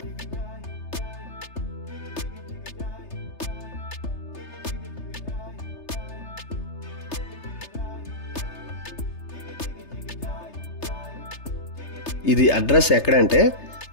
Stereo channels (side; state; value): right; late; 3.3 ms